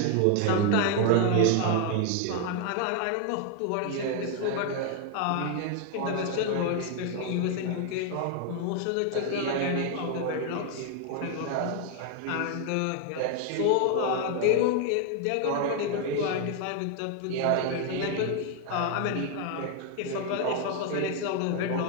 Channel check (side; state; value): both; different; correlation 0.00